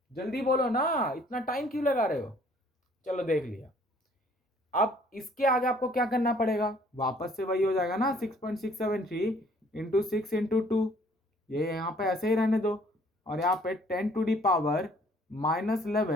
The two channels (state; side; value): normal; both; correlation 0.59